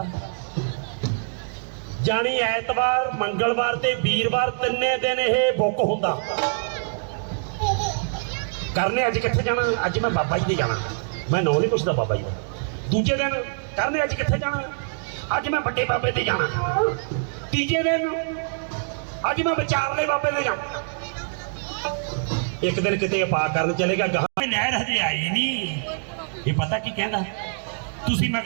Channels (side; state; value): left; silent; digital silence